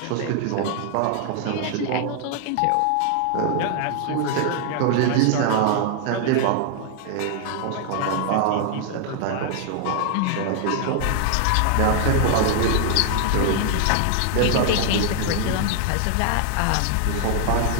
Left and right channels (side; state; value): both; different; correlation 0.00